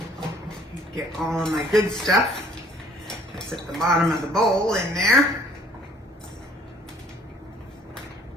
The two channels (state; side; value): normal; both; correlation 0.58